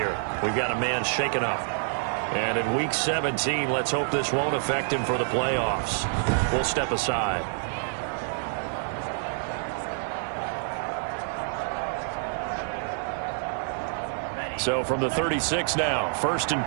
We've got a man shaken up. And in Week 17, let's hope this won't affect him for the playoffs. We'll step aside. So from the 36 now, 1st and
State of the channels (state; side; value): silent; left; digital silence